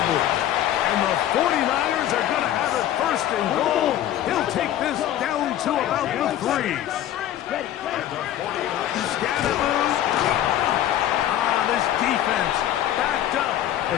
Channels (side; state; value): right; quieter; 12.1 dB